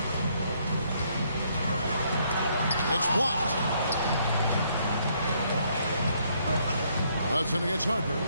It's blocked. Hudson against Harper.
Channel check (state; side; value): inverted; both; correlation -0.70